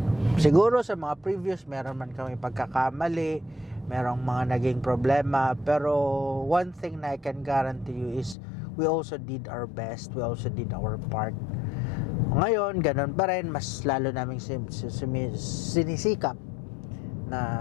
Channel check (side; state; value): right; drops out; at 8.3 s